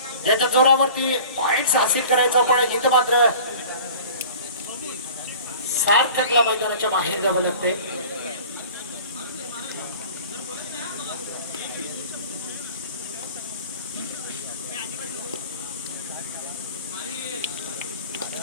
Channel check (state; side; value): inverted; both; correlation -0.43